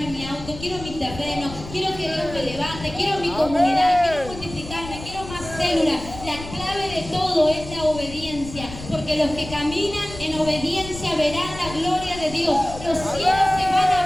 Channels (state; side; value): noise; left; rumble, 12 dB below the sound